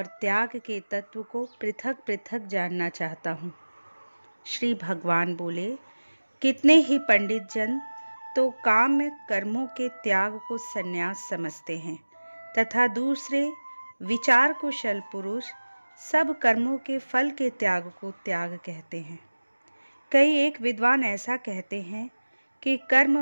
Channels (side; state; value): both; inverted; correlation -1.00